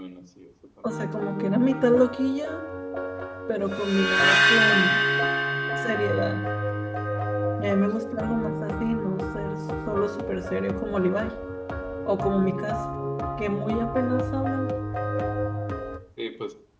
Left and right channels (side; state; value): both; identical; correlation 1.00